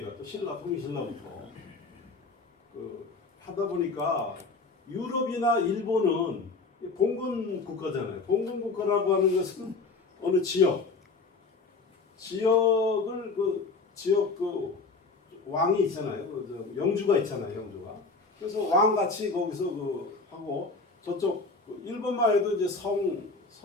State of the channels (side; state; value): right; quieter; 4.0 dB